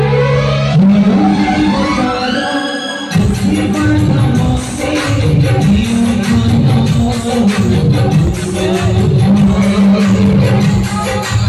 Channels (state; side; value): identical; both; correlation 1.00